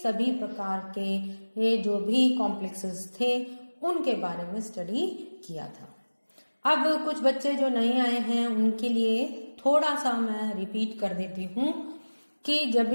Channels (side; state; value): both; inverted; correlation -1.00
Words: सभी प्रकार के ये जो भी कॉम्प्लेक्सेस थे उनके बारे में स्टडी किया था। अब कुछ बच्चे जो नए आए हैं उनके लिए थोड़ा सा मैं रिपीट कर देती हूँ कि जब